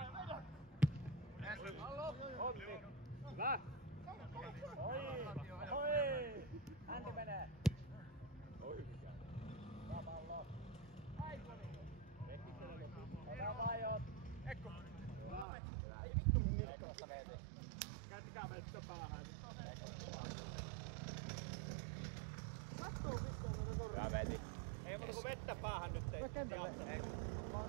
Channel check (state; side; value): drops out; left; at 15.5 s